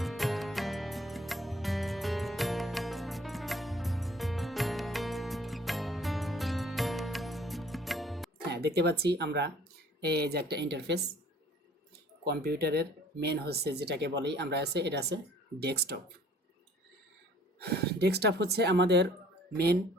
হ্যাঁ, দেখতে পাচ্ছি আমরা এই যে একটা ইন্টারফেস। কম্পিউটারের মেন হচ্ছে যেটাকে বলি আমরা আছে, এটা আছে ডেস্কটপ। ডেস্কটপ হচ্ছে আমাদের মেন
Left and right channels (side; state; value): both; normal; correlation 0.55